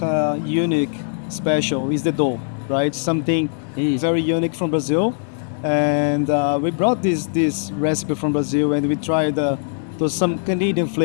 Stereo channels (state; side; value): silent; right; 65 dB below the other